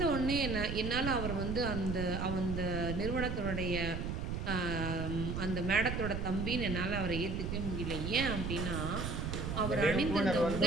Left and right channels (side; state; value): right; noise; rumble, 3 dB below the sound